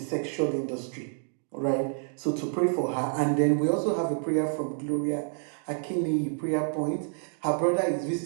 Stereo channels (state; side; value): silent; left; 59 dB below the other